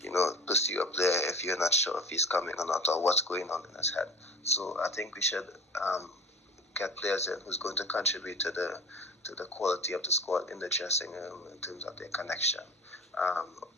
pursue a player if you're not sure if he's coming or not or what's going on in his head. So I think we should get players in who's going to contribute to the quality of the squad in the dressing room in terms of their connection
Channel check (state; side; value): normal; both; correlation 0.38